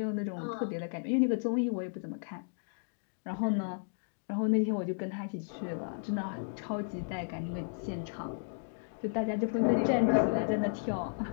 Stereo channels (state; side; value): silent; right; digital silence